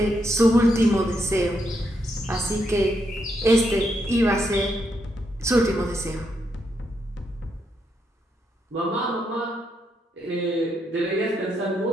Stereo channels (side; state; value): both; normal; correlation 0.79